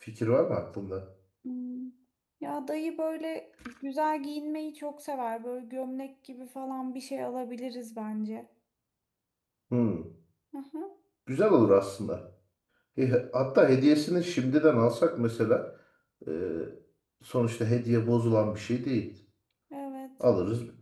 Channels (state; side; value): identical; both; correlation 1.00